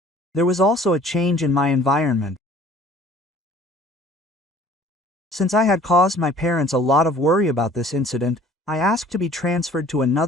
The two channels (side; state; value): both; normal; correlation 0.52